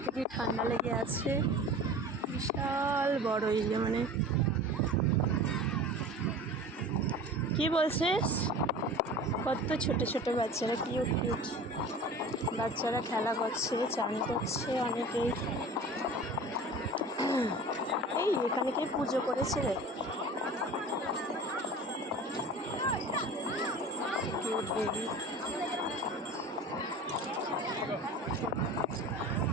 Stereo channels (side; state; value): both; normal; correlation 0.38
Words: থেকেই ঠান্ডা লেগে আছে। বিশাল বড় এই কি বলছিস? কত ছোট ছোট বাচ্চারা, কিউট কিউট বাচ্চারা খেলা করছে, চান করছে অনেকেই। এই এখানে কে পুজো করেছে রে? Cute baby.